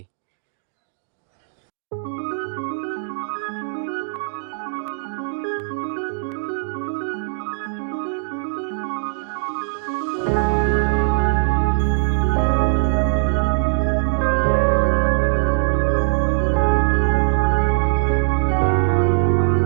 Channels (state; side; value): silent; left; digital silence